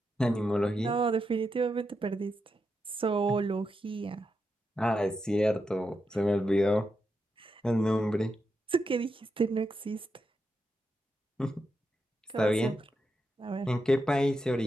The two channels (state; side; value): normal; both; correlation 0.85